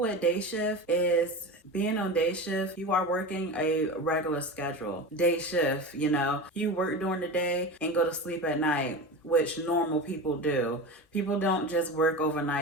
day shift is being on day shift, you are working a regular schedule. Day shift, you work during the day and go to sleep at night, which normal people do. People don't just work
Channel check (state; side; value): normal; both; correlation 0.27